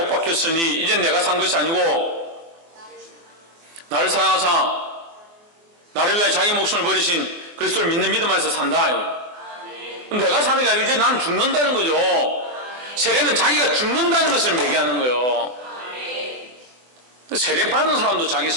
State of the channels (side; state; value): left; late; 24 ms